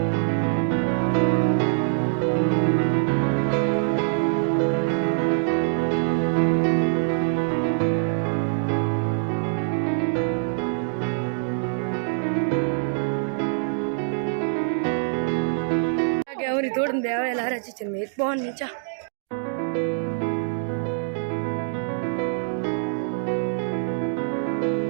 ಅವರಿ ತೋಡನ್ ಬೇವ ಎಲ್ಲ ರಚಿಚನ್ ಮೇತ್ ಬಾನ್ ನೀಚಾ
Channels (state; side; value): silent; left; digital silence